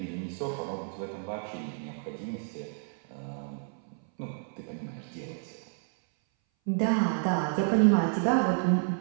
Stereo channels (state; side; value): silent; left; 58 dB below the other